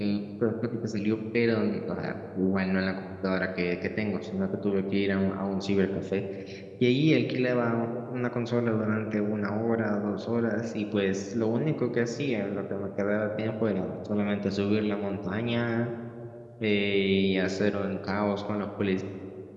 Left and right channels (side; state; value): both; identical; correlation 1.00